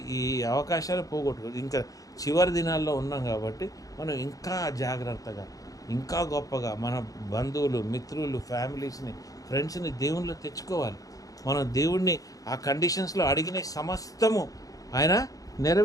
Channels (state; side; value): late; right; 0.17 ms